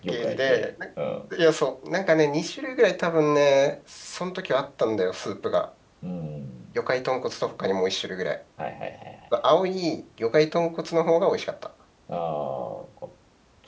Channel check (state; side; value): identical; both; correlation 1.00